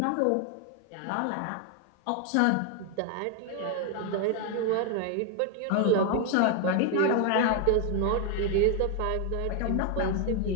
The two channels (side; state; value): both; different; correlation 0.01